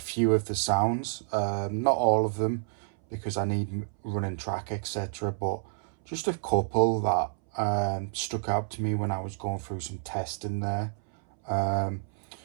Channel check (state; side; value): silent; left; 58 dB below the other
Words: of the sounds. Not all of them because I need running track, etc., but just a couple that stuck out to me when I was going through some testing there.